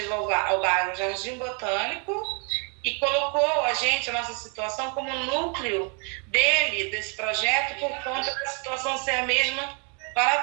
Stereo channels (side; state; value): left; quieter; 37.5 dB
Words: ao bairro Jardim Botânico e colocou a nossa situação como núcleo desse projeto por conta da situação ser a mesma para